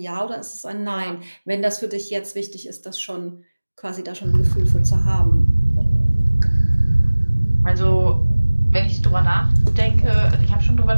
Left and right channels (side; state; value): both; inverted; correlation -1.00